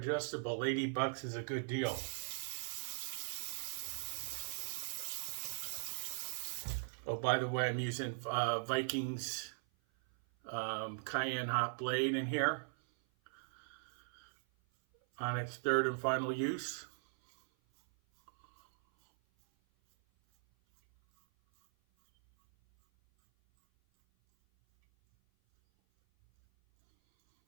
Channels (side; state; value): left; silent; 51 dB below the other